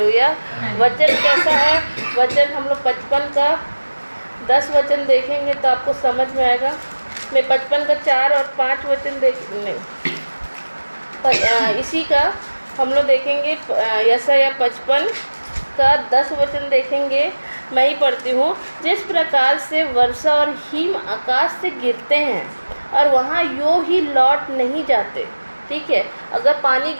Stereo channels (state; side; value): inverted; both; correlation -1.00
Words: वचन कैसा है, वचन हम लोग 55 का 10 वचन देखेंगे तो आपको समझ में आएगा। मैं 55 का 4 और 5 वचन इसी का हम लोग देखेंगे। यशायाह 55 का 10 वचन देखेंगे। मैं ही पढ़ती हूँ। जिस प्रकार से वर्षा और हिम आकाश से गिरते हैं और वहाँ यूँ ही लौट नहीं जाते, ठीक है। अगर पानी